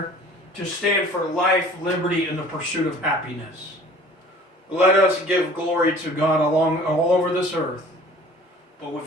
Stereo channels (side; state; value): both; normal; correlation 0.48